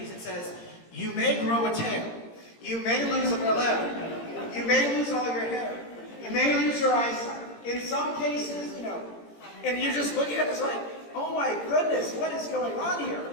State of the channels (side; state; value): right; late; 17 ms